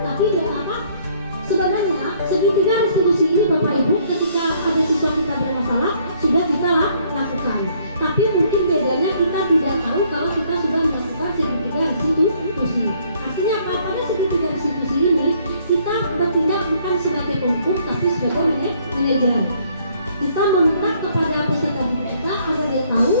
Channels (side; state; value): both; inverted; correlation -0.64